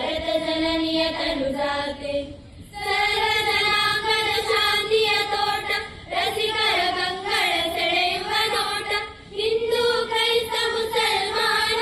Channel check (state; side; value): identical; both; correlation 1.00